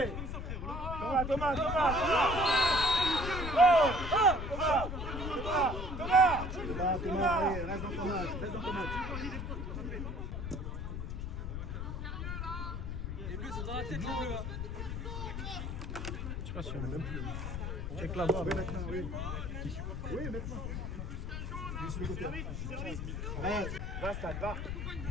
Thomas. Oh. Thomas. Allez, reste dans ton match. Les bleus sont dans la tête, les bleus. Je sais pas si on a même plus. Check la voix. Oui, maintenant, oui. Oui, maintenant. Je suis le côté. Allez. Va, Stade, va.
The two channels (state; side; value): noise; left; rumble, 4 dB below the sound